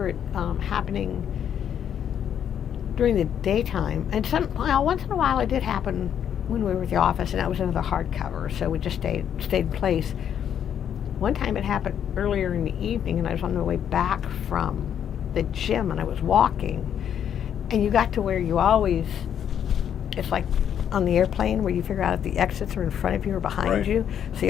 it happening during the daytime. And once in a while it did happen when we were at the office, and that was another hardcover, so we just stayed in place. One time it happened earlier in the evening, and I was on the way back from the gym, and I was walking, and you got to where you always, it's like on the airplane where you figure out if the exits are in front of you or behind you. So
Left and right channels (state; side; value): quieter; right; 9.1 dB